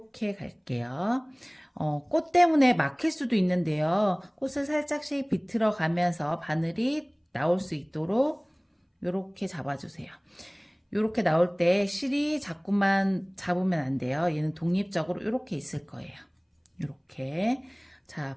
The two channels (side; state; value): both; identical; correlation 1.00